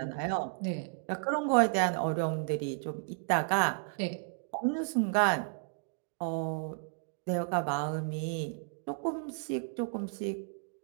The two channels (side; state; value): left; silent; digital silence